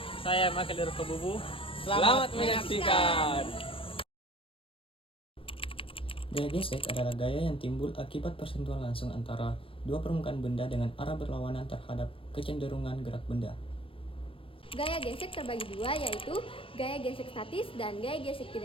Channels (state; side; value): late; right; 0.26 ms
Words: Saya Makadir Kebubu. Selamat menyaksikan. Gaya gesek adalah gaya yang timbul akibat persentuhan langsung antara dua permukaan benda dengan arah berlawanan terhadap kecenderungan gerak benda. Gaya gesek terbagi dua, yaitu gaya gesek statis dan gaya gesek